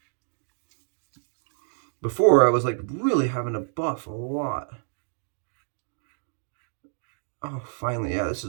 Before, I was like really having to buff a lot. Oh, finally, yeah, this is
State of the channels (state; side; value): silent; left; digital silence